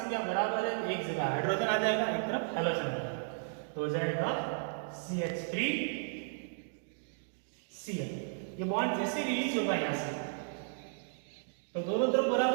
बराबर है, एक जगह हाइड्रोजन आ जाएगा, एक तरफ हैलोजन आ जाएगा, तो हो जाएगा CH3Cl। ये बॉन्ड जैसे रिलीज होगा यहाँ से तो दोनों तरफ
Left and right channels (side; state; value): left; silent; digital silence